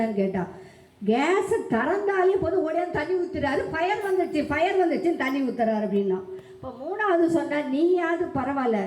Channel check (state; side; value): identical; both; correlation 1.00